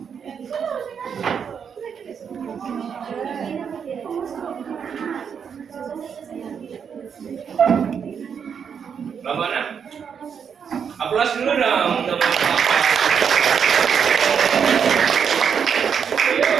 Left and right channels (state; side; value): quieter; left; 7.1 dB